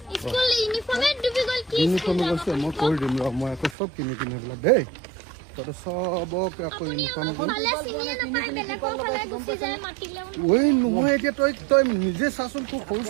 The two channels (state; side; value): drops out; left; at 3.8 s